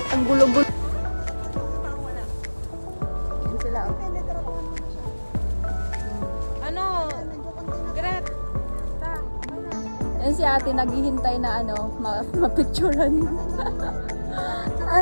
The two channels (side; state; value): both; inverted; correlation -1.00